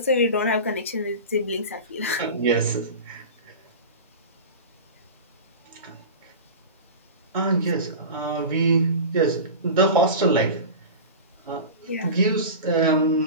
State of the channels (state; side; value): inverted; both; correlation -0.30